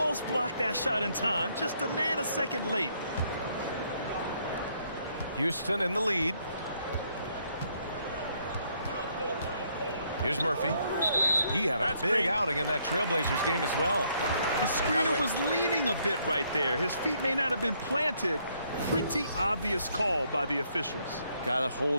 blocked that shot in time, just a nanosecond late. Houston in the lead. Here's Murphy. He had a big outing in that Trailblazers game as well. The screener was leaning a bit right there. His feet may not have been planted. Pretty obvious call by the officials. Got to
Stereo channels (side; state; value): both; inverted; correlation -0.70